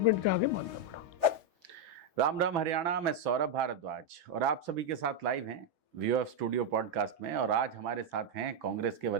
के आगे मानना पड़ा। राम राम हरियाणा, मैं सौरभ भारद्वाज और आप सभी के साथ लाइव हैं व्यू ऑफ स्टूडियो पॉडकास्ट में। और आज हमारे साथ हैं कांग्रेस के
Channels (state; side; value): late; left; 3.4 ms